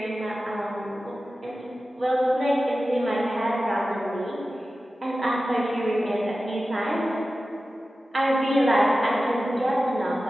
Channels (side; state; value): both; normal; correlation 0.94